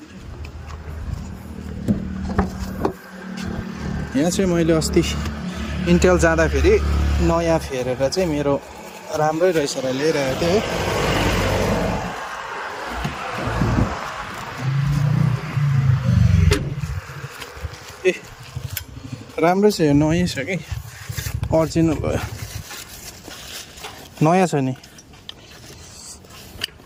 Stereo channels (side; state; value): both; identical; correlation 1.00